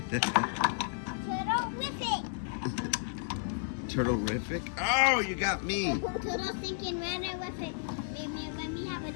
Turtle-rific. Oh, you got me. Turtle thinking runner with it. Let me have a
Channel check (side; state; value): right; silent; 55 dB below the other